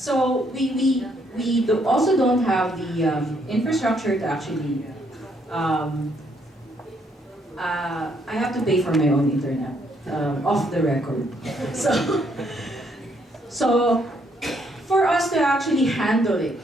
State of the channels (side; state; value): both; normal; correlation 0.71